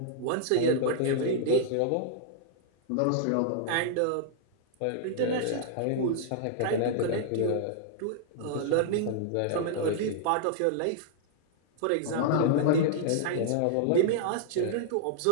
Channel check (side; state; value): both; different; correlation -0.01